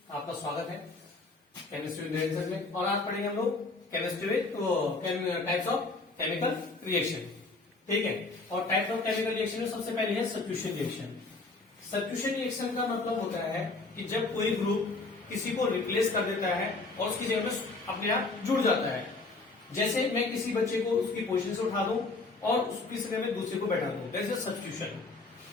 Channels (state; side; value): quieter; right; 3.5 dB